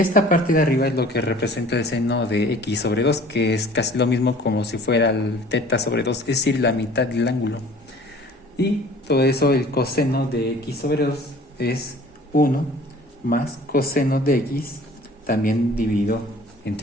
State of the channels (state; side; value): normal; both; correlation 0.48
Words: parte de arriba es lo que representa el seno de x sobre 2, que es casi lo mismo como si fuera el teta sobre 2, es decir, la mitad del ángulo. Y todo eso, el coseno de x sobre 2 es 1 más coseno de x también dividido